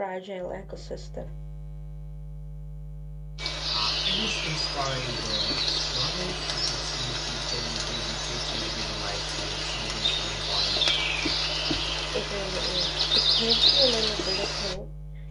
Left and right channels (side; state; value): both; identical; correlation 1.00